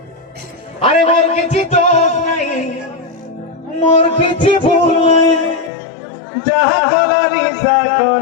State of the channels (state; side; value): drops out; right; at 5.7 s